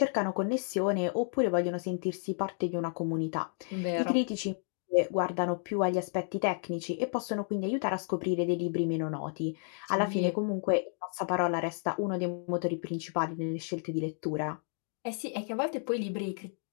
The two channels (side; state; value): right; silent; 57 dB below the other